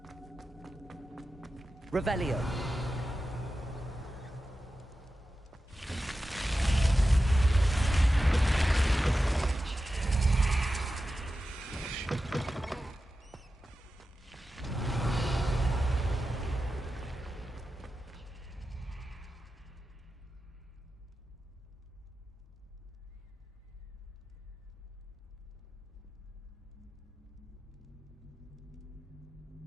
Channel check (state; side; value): normal; both; correlation 0.92